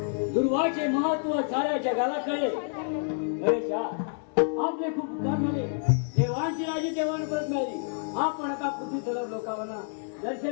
दुर्वाचे महत्व साऱ्या जगाला कळले. गणेशा, आपले खूप उपकार झाले. देवांची राजी देवांना परत मिळाली. आपण आता पृथ्वी तलाव लोकांना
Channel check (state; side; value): silent; right; digital silence